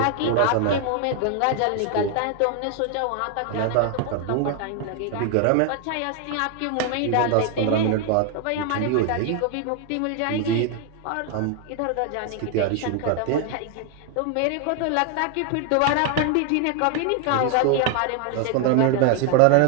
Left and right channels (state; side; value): different; both; correlation 0.00